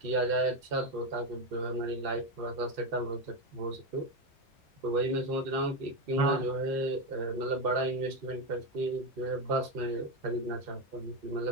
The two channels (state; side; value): normal; both; correlation 0.12